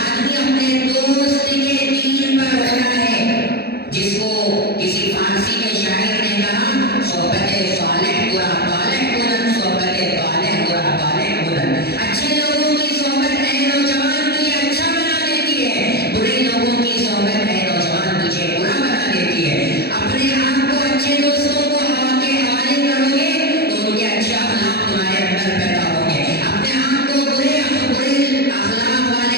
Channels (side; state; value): right; late; 0.46 ms